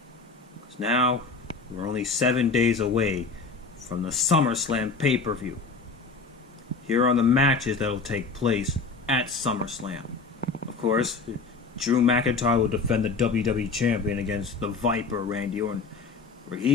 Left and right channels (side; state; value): right; quieter; 4.3 dB